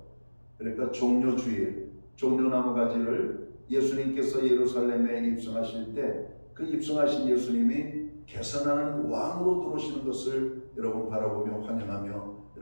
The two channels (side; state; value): both; inverted; correlation -1.00